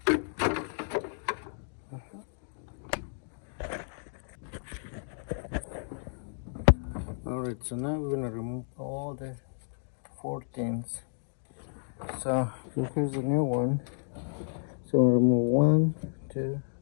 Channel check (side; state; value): right; silent; digital silence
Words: Alright, so now we're gonna remove all the 14s. So here's the new one. So we'll remove 1, 2,